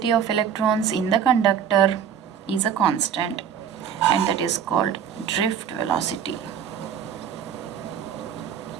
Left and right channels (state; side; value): quieter; left; 8.2 dB